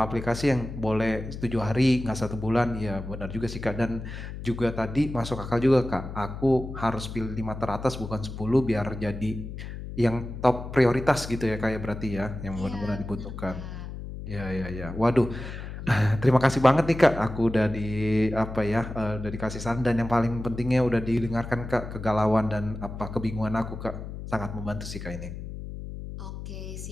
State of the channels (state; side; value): noise; left; hum, 9 dB below the sound